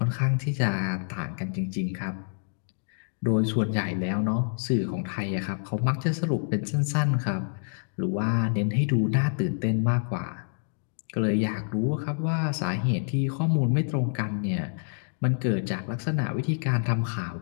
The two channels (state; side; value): silent; right; digital silence